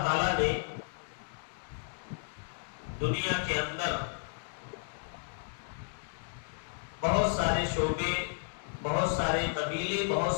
تعالیٰ نے دنیا کے اندر بہت سارے شعبے، بہت سارے قبیلے، بہت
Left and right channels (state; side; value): silent; right; digital silence